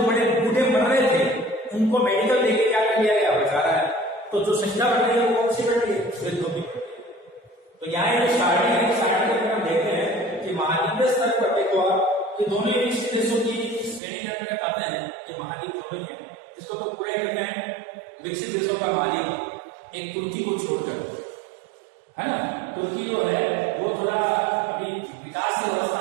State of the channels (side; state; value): left; drops out; at 14.0 s